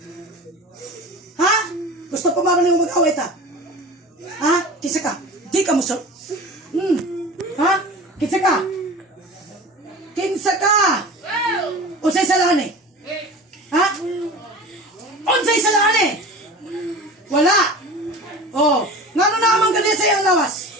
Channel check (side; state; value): both; normal; correlation 0.35